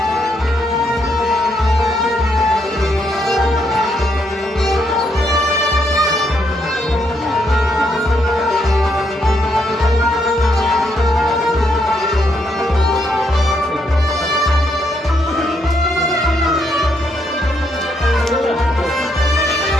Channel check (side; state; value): both; normal; correlation 0.76